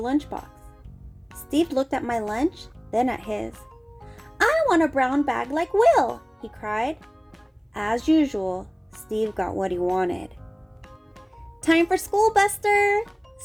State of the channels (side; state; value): both; identical; correlation 1.00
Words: lunchbox. Steve looked at my lunch, then at his. "I want a brown bag like Will," he cried. As usual, Steve got what he wanted. "Time for school, Buster,"